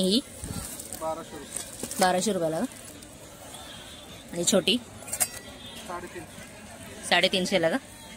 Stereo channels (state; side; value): identical; both; correlation 1.00